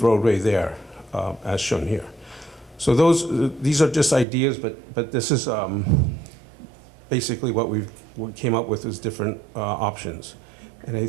roadway there, as shown here. So these are just ideas, but this is basically what we came up with as different options. And I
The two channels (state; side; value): drops out; left; at 4.2 s